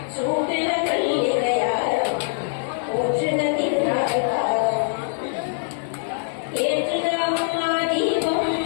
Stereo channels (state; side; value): silent; right; digital silence